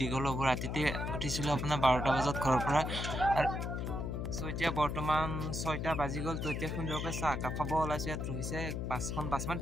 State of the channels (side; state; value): left; noise; hum, 3 dB below the sound